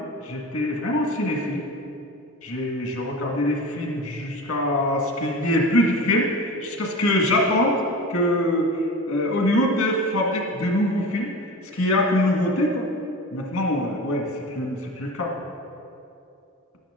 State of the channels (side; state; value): both; normal; correlation 0.32